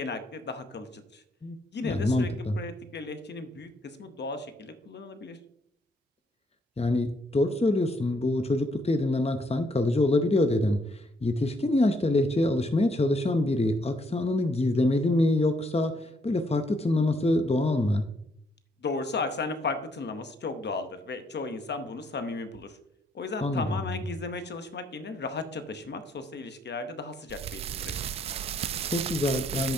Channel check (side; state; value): both; normal; correlation 0.71